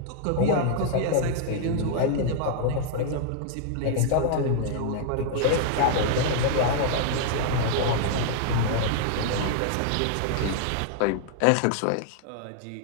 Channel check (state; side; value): different; both; correlation -0.01